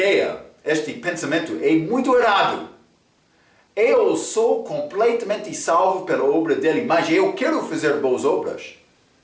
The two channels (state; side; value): identical; both; correlation 1.00